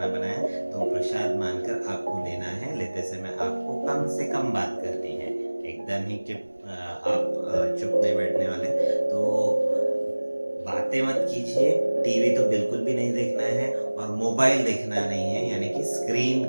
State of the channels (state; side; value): inverted; both; correlation -1.00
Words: बनाया है, तो प्रसाद मानकर आपको लेना है। लेते समय आपको कम से कम बात करनी है, एकदम ही कि आप चुप नहीं बैठने वाले। तो बातें मत कीजिए, टीवी तो बिल्कुल भी नहीं देखना है और मोबाइल देखना नहीं है, यानी कि स्क्रीन